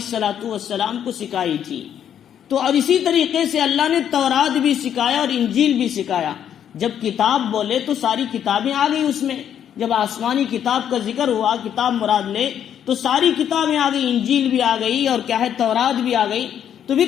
السلام کو سکھائی تھی۔ تو اور اسی طریقے سے اللہ نے تورات بھی سکھایا اور انجیل بھی سکھایا۔ جب کتاب بولے تو ساری کتابیں آ گئی اس میں، جب آسمانی کتاب کا ذکر ہوا، کتاب مراد لے تو ساری کتابیں آ گئی، انجیل بھی آ گئی اور کیا ہے تورات بھی آ گئی۔ تو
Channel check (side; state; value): right; quieter; 9.4 dB